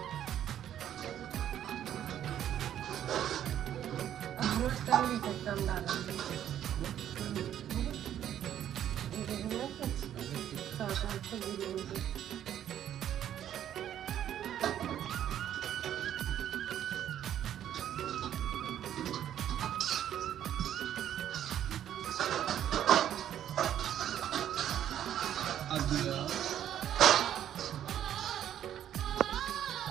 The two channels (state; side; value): quieter; left; 10.7 dB